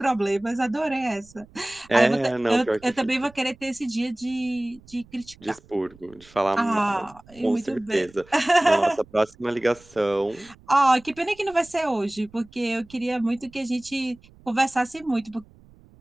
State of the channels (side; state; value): right; noise; rumble, 25 dB below the sound